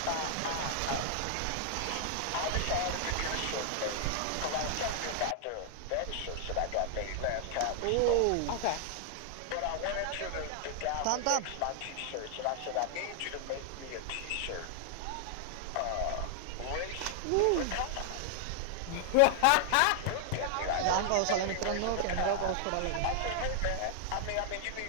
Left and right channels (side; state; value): both; different; correlation 0.00